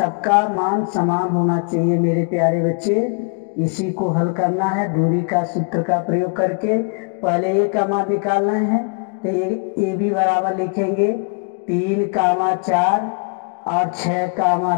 मान समान होना चाहिए मेरे प्यारे बच्चे। इसी को हल करना है दूरी का सूत्र का प्रयोग करके। पहले ए का मान निकालना है, तो ए बी बराबर लिखेंगे 3, 4 और 6,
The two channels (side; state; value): right; quieter; 38.2 dB